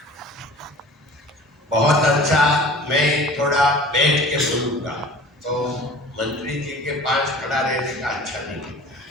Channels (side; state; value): both; normal; correlation 0.43